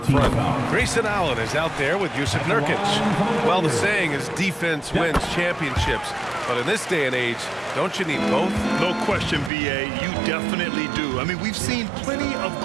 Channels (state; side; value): drops out; left; at 9.5 s